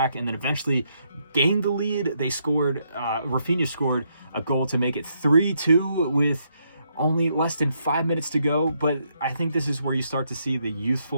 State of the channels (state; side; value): inverted; both; correlation -0.76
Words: and then eventually gained the lead. They scored, Rafinha scored a goal to make it 3-2 with only less than 5 minutes to go. But I think this is where you start to see the